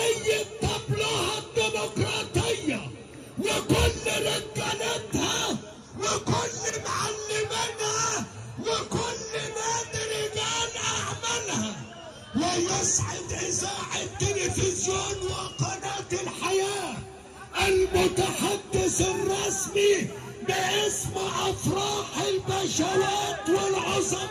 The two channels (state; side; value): identical; both; correlation 1.00